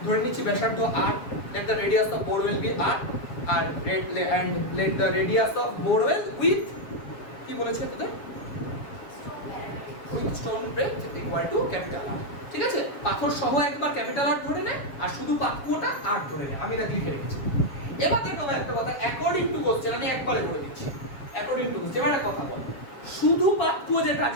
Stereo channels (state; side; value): late; right; 7.3 ms